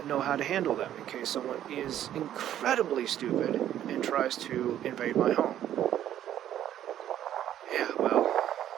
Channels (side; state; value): left; quieter; 11.4 dB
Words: know how to handle them in case someone is incredibly stupid and tries to invade my home. Yeah, well,